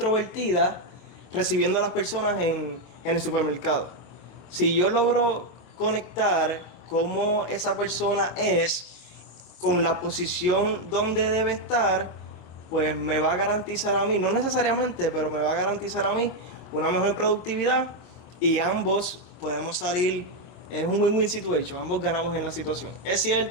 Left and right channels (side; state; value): right; late; 25 ms